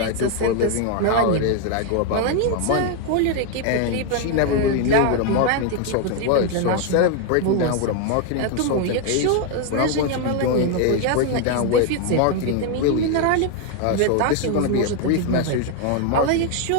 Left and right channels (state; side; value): different; both; correlation 0.01